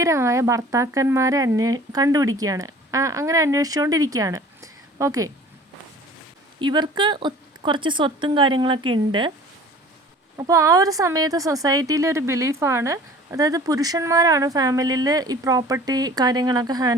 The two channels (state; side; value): normal; both; correlation 0.47